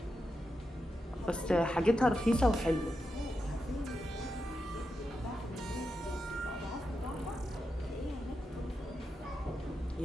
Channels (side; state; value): both; normal; correlation 0.87